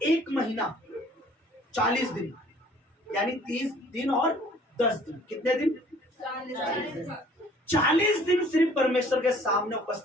1 महीना 40 दिन यानी 30 दिन और 10 दिन, कितने दिन? 40 दिन सिर्फ परमेश्वर के सामने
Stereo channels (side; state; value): both; normal; correlation 0.55